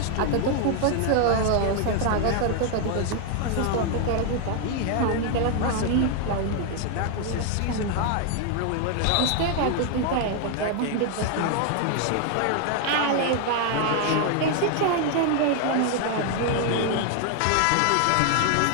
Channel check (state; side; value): different; both; correlation 0.00